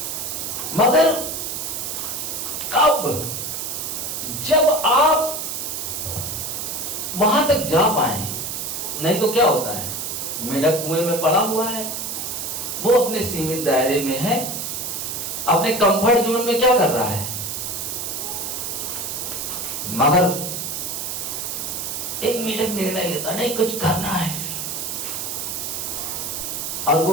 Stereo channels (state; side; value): noise; right; hiss, 4 dB below the sound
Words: मगर कब? जब आप वहां तक जा पाए। नहीं तो क्या होता है, मेढक कुएं में पड़ा हुआ है, वो अपने सीमित दायरे में है, अपने कंफर्ट जोन में क्या कर रहा है। मगर एक मेढक निर्णय लेता, नहीं कुछ करना है, और